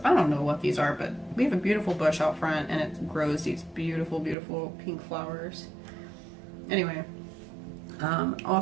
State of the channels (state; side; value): drops out; left; at 4.4 s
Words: I don't know what these are, but we have a beautiful bush out front, and it grows these beautiful, beautiful pink flowers. Anyway.